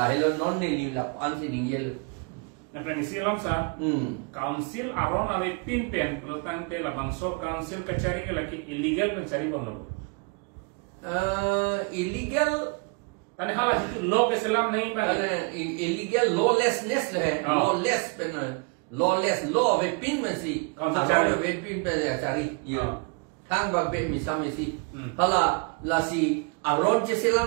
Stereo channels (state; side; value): quieter; left; 33.7 dB